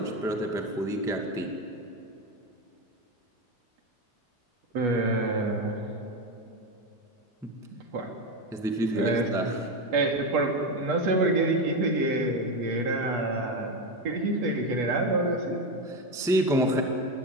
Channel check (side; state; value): both; normal; correlation 0.14